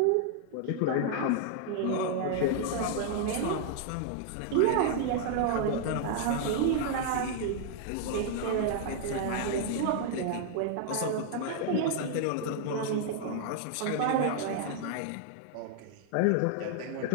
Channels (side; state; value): both; different; correlation 0.00